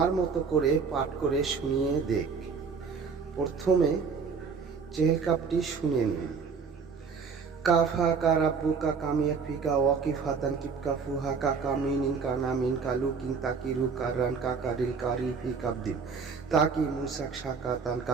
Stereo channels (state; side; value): quieter; left; 5.5 dB